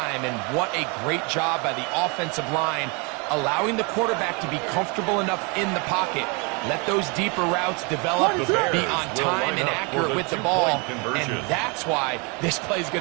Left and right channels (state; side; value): quieter; left; 31.1 dB